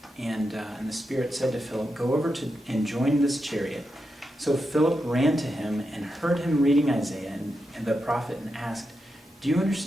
and the Spirit said to Philip, "Go over to and join this chariot." So Philip ran to him and heard him reading Isaiah and the prophet and asked, "Do you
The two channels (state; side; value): normal; both; correlation 0.87